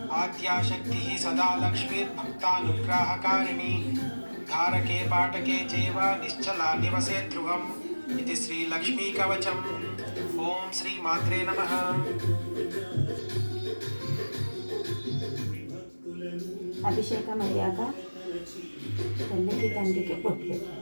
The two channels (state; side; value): inverted; both; correlation -1.00